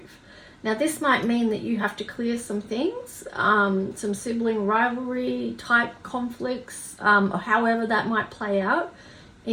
Now this might mean that you have to clear some things, some sibling rivalry type conflicts, or however that might play out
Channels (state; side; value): identical; both; correlation 1.00